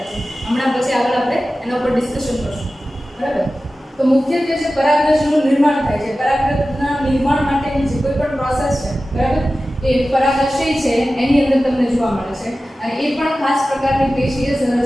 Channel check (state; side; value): normal; both; correlation 0.95